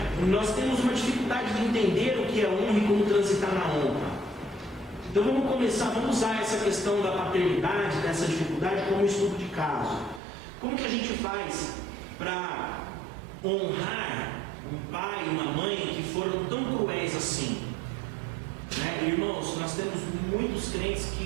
Nós temos uma dificuldade de entender o que é honra e como transitar na honra. Então vamos usar essa questão da paternidade, dessa dificuldade, como um estudo de caso. Como que a gente faz para honrar um pai e uma mãe que foram tão cruéis assim? Né? Irmãos, nós temos muitos crentes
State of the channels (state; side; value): drops out; left; at 10.2 s